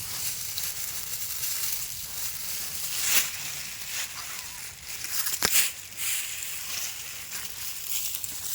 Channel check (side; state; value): both; identical; correlation 1.00